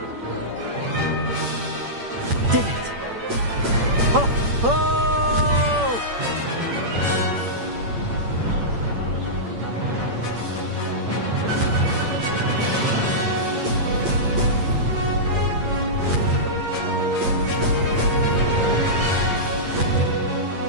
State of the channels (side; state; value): left; late; 8.7 ms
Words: Did it. Oh! Oh!